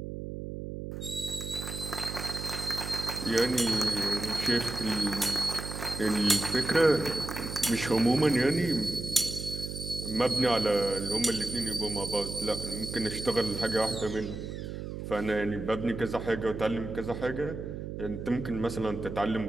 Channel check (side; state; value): right; noise; hum, 7 dB below the sound